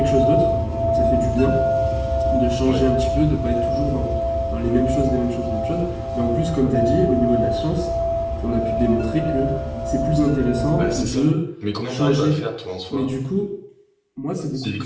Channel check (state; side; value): identical; both; correlation 1.00